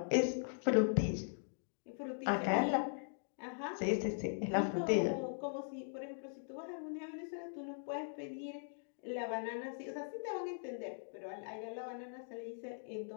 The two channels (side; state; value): right; silent; digital silence